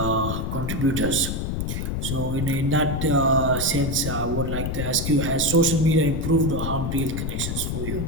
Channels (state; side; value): noise; left; rumble, 3 dB below the sound